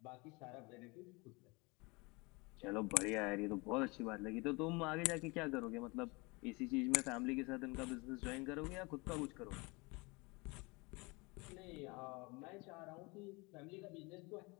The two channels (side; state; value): right; quieter; 26.6 dB